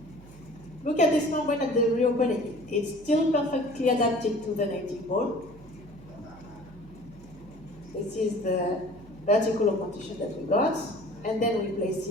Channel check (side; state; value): right; noise; hum, 21 dB below the sound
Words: Look at this membrane at the reopening. It's still perfectly adapted to the native bone. This is the vertical augmentation that we got. And then we place